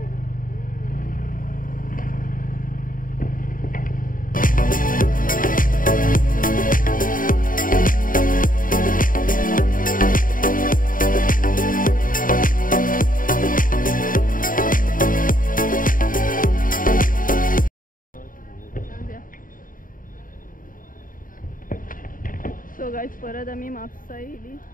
सो गायज परत आमी म्हापसा येयली.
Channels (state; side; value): late; right; 0.40 ms